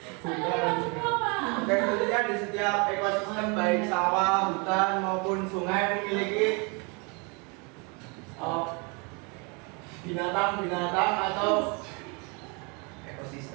Oke, tentunya di setiap ekosistem baik sawah, hutan maupun sungai memiliki binatang-binatang atau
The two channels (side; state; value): left; quieter; 31.8 dB